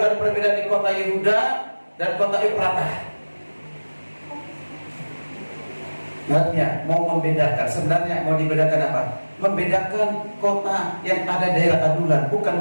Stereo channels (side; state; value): both; inverted; correlation -1.00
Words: ada perbedaan di kota Yehuda dan kota Efrata. Artinya mau membedakan, sebenarnya mau dibedakan apa? Membedakan kota yang ada daerah adulan, bukan